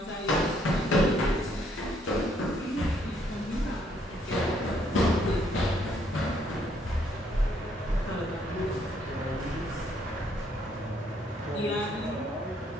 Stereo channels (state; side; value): normal; both; correlation 0.69